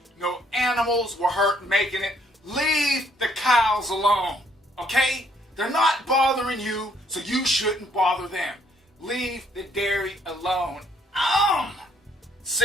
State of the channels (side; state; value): both; normal; correlation 0.66